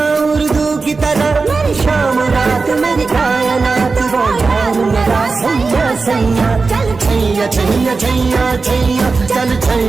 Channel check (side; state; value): left; quieter; 4.2 dB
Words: उर्दू की तरह मेरी शाम रात मेरी कायनात वो यार मेरा सैया सैया चल छैया छैया छैया छैया चल